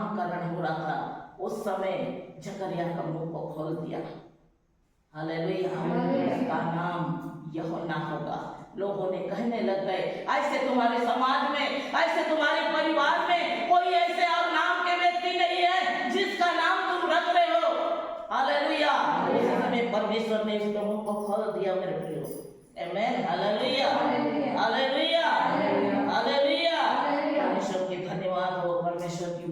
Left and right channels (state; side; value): identical; both; correlation 1.00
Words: हो रहा था उस समय जकरिया का मुंह को खोल दिया। हालेलुया। उसका नाम यूहन्ना होगा। लोगों ने कहने लग गए ऐसे तुम्हारे समाज में, ऐसे तुम्हारे परिवार में कोई ऐसे और नाम के व्यक्ति नहीं है जिसका नाम तुम रख रहे हो। हालेलुया। उस समय परमेश्वर ने उसके मुंह को खोल दिया मेरे प्रियो, आमीन, हालेलुया, हालेलुया, हालेलुया। परमेश्वर की धन्यवाद हो, परमेश्वर की